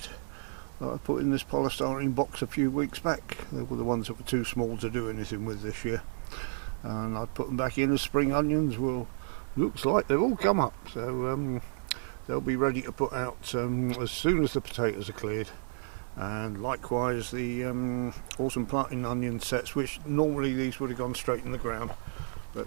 that I put in this polystyrene box a few weeks back. They were the ones that were too small to do anything with this year, and I put them back in as spring onions. Well, looks like they've all come up, so they'll be ready to put out as soon as the potatoes are cleared. And likewise the autumn planting onion sets, which normally these would have gone straight in the ground,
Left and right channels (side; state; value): left; silent; digital silence